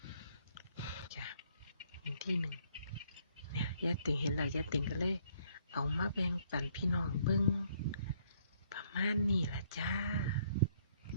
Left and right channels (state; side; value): inverted; both; correlation -0.66